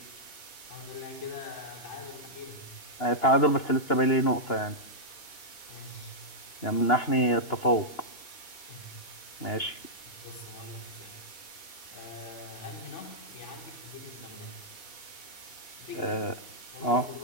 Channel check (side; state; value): right; late; 2.9 ms